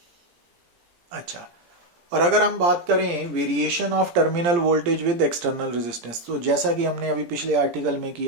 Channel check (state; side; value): late; left; 17 ms